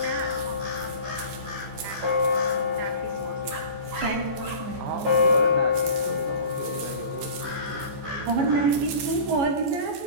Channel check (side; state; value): left; late; 15 ms